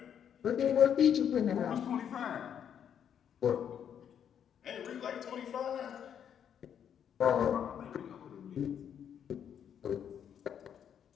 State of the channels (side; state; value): right; quieter; 8.7 dB